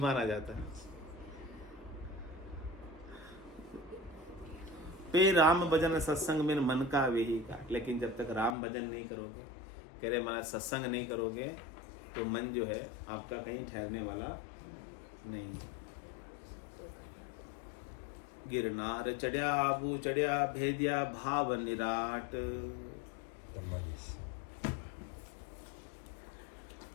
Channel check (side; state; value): right; drops out; at 8.6 s